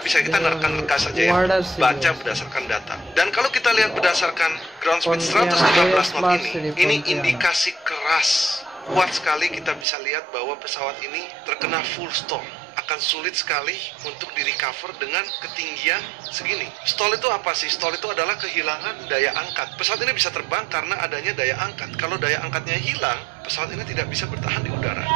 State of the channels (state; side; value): drops out; left; at 9.9 s